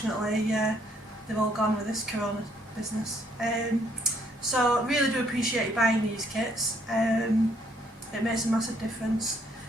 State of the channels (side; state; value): both; normal; correlation 0.67